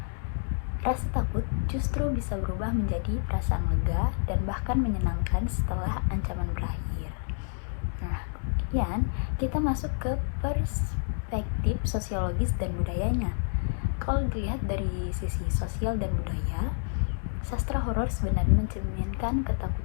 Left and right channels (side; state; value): right; silent; digital silence